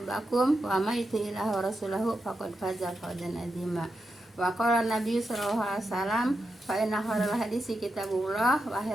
wa may yuti'illaha wa rasulahu faqad faza fawzan 'azima. Wa qala Nabi sallallahu alaihi wasallam fa inna khairal hadisi kitabullah wa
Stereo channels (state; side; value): normal; both; correlation 0.87